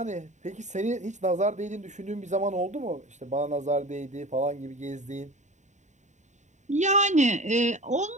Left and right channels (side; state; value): left; late; 0.34 ms